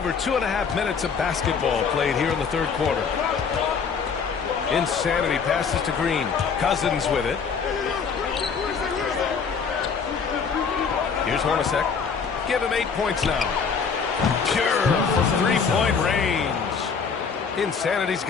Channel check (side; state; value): right; quieter; 5.9 dB